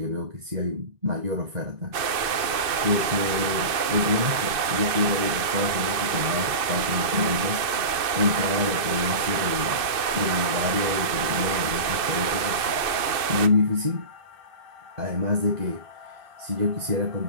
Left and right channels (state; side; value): late; left; 2.5 ms